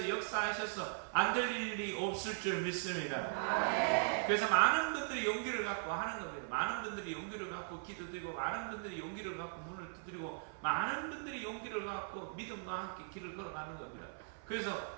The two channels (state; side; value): silent; left; 52 dB below the other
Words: 역사하셔서 안 될 일이 없을 줄 믿습니다. 그래서 많은 분들이 용기를 갖고 하는 겁니다. 많은 분들이 용기를 갖고 기도드리고 많은 분들이 용기를 갖고 문을 두드리고 많은 분들이 용기를 갖고 믿음과 함께 길을 걸어가는 겁니다.